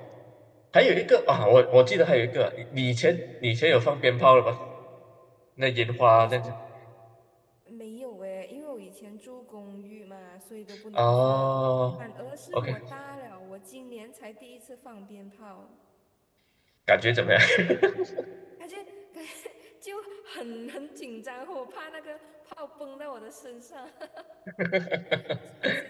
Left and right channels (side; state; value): both; identical; correlation 1.00